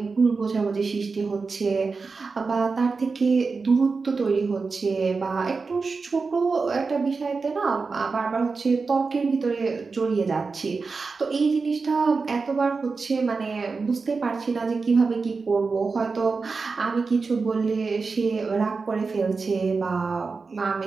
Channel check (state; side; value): quieter; left; 4.5 dB